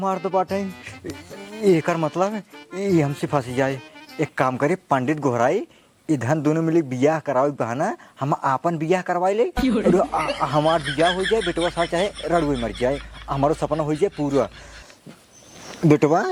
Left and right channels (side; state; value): both; identical; correlation 1.00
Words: दो बाटे। एकर मतलब ये हमसे फंस जाए। एक काम करे पंडित गोहराई इधर दोनों मिले बियाह कराओ बहाना हम आपन बियाह करवाई ले। हमार बियाह हो जाए बेटवा सा चाहे रड़ुए मर जाए, हमारो सपना हो जाए पूरा। बेटवा